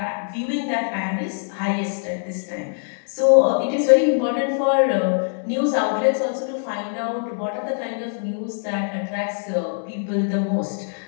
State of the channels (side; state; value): right; silent; digital silence